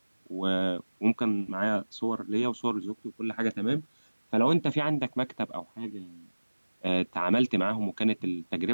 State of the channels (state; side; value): inverted; both; correlation -1.00